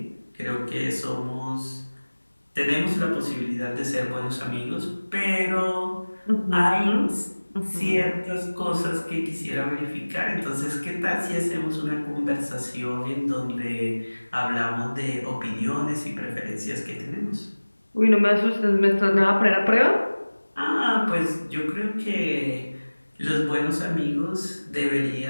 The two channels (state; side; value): inverted; both; correlation -1.00